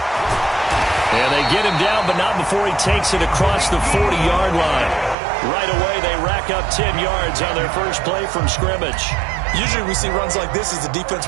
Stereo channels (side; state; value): left; drops out; at 5.2 s